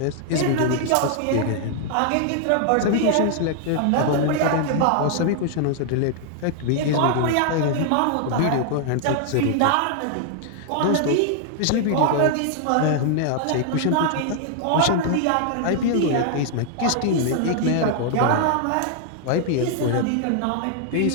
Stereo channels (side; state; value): both; different; correlation 0.00